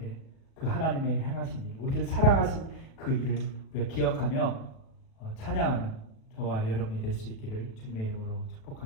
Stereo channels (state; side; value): late; right; 37 ms